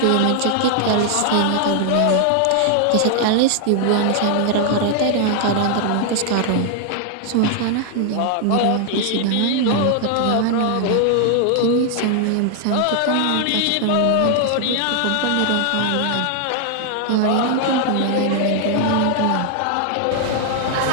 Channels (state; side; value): different; both; correlation 0.00